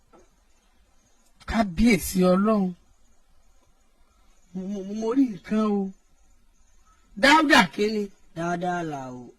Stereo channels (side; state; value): both; identical; correlation 1.00